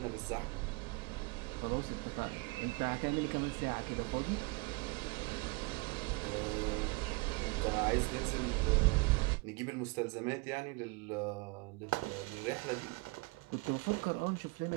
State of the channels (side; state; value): left; quieter; 26.8 dB